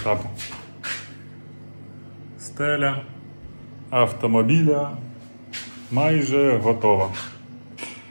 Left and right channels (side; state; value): both; inverted; correlation -1.00